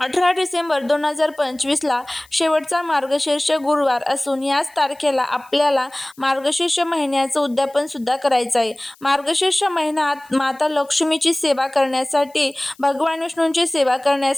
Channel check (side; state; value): left; noise; hiss, 28 dB below the sound